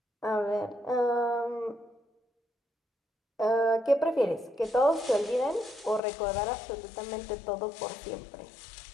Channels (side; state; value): right; drops out; at 6.0 s